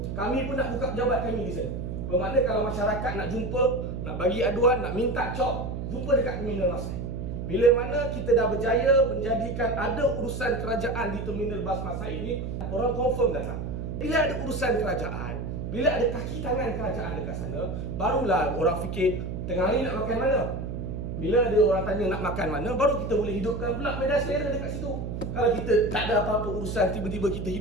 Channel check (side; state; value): right; noise; hum, 5 dB below the sound